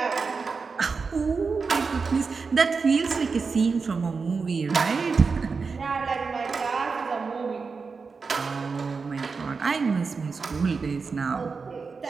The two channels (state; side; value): quieter; left; 4.8 dB